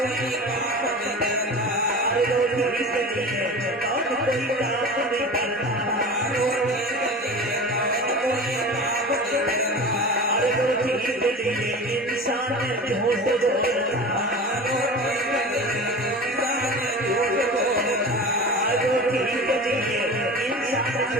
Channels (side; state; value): both; normal; correlation 0.33